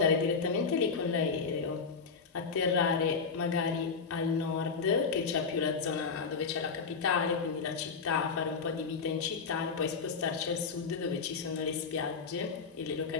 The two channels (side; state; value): right; quieter; 5.2 dB